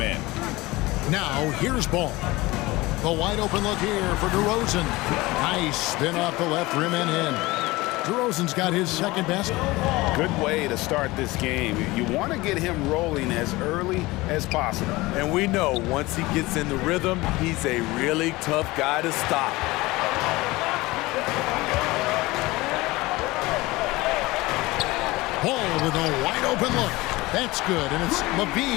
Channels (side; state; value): right; quieter; 20.7 dB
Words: Now here's Ball. The wide open look here for DeRozan. Nice spin off the left rim and in. DeRozan's got his second basket. Good way to start this game. You want to get him rolling as early as possible. And we know once he gets in the rhythm, he's a really tough guy to stop. Ball with a wide open look. That's good, and it's